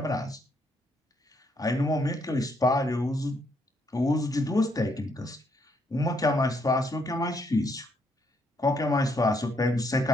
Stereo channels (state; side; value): normal; both; correlation 0.73